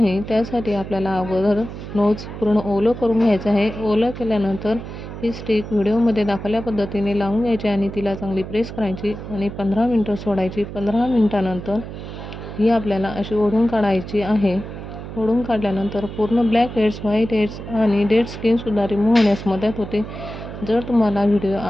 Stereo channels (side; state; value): right; noise; hum, 10 dB below the sound